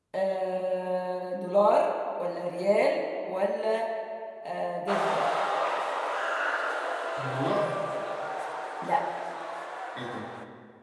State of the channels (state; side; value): identical; both; correlation 1.00